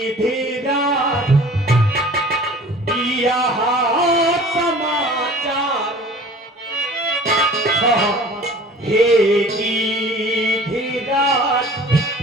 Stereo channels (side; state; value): both; normal; correlation 0.45